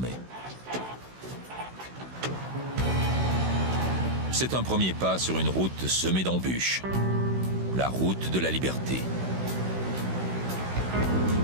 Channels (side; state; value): left; late; 16 ms